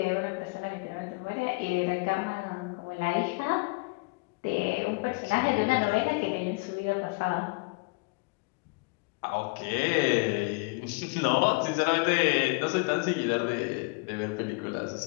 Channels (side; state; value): right; quieter; 28.8 dB